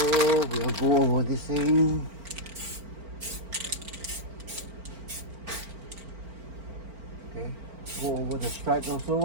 we'll go over this thing. Okay, go over the stripes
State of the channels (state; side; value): late; left; 4.4 ms